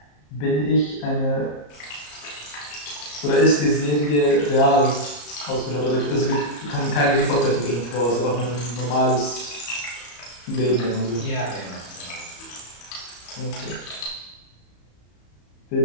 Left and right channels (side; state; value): right; late; 34 ms